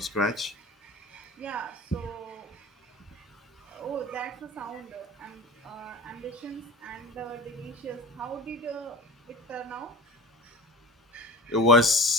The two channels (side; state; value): both; normal; correlation 0.36